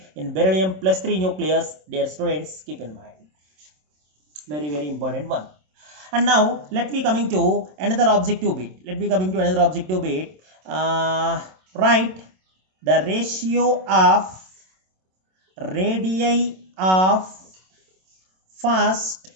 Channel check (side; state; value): left; late; 27 ms